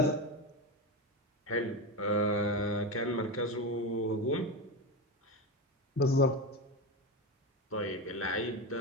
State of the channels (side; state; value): both; normal; correlation 0.17